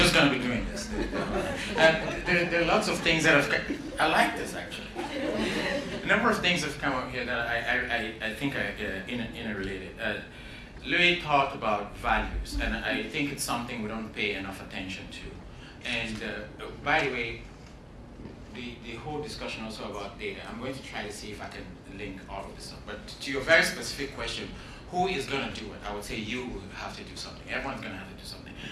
going to be doing this. There are lots of things that I like this actually. A number of things have come up here that I think are interrelated. Louis talked about values, and I think it's something we don't pay enough attention to. And by the way, the whole discussion also about data, I'm going to try to see if I can link all of this up. But to your very specific question, who is going to do it? I would say you will have to do something. Everyone's going to have to do something.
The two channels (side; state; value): both; identical; correlation 1.00